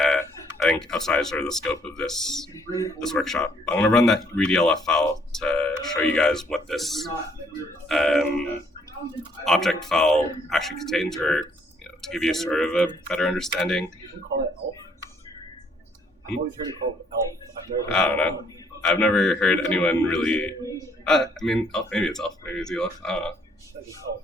think outside sort of the scope of this workshop, I'm going to run that read ELF file to show you guys what this object file actually contains, or to give you sort of a better understanding. You call it ELF? I've always heard it called ELF. I don't know. I've never heard anyone really. I mean, ELF. Maybe it's ELF. Maybe it's ELF. I don't know.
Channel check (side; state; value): both; normal; correlation 0.65